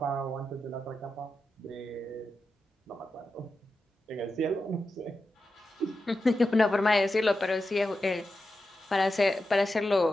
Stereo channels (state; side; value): normal; both; correlation 0.90